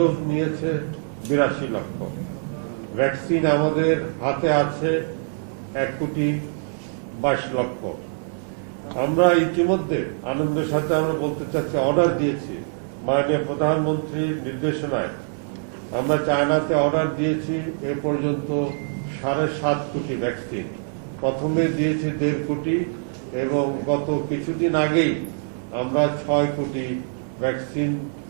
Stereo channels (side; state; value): left; silent; digital silence